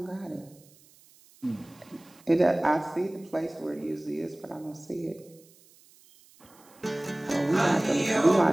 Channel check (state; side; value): noise; right; hiss, 27 dB below the sound